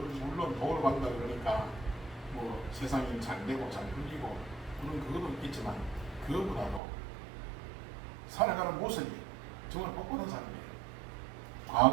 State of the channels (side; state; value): left; drops out; at 6.8 s